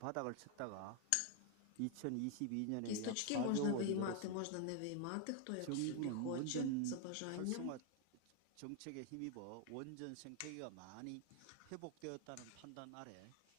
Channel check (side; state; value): both; different; correlation 0.00